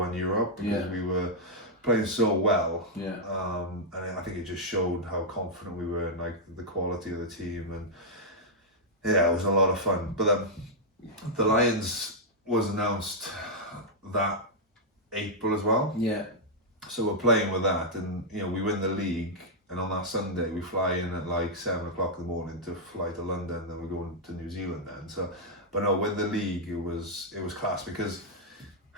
Europe because we were playing so well. And I think it just showed how confident we were in like the quality of the team, and yeah, it was a lot of fun. But the Lions was announced that April as well. Yeah. So we're playing with that, and we win the league, and on that Sunday we fly in at like 7 o'clock in the morning to fly to London, then we're going to New Zealand then. So, but no, win the league, it was class, because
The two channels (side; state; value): both; normal; correlation -0.06